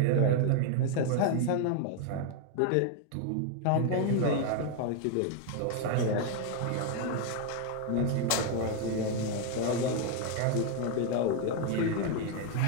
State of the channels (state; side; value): different; both; correlation 0.00